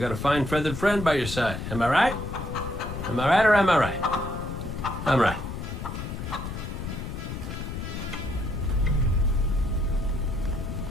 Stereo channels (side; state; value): left; noise; rumble, 6 dB below the sound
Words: a fine feathered friend by your side? Am I right? Am I right or am I right? I'm right.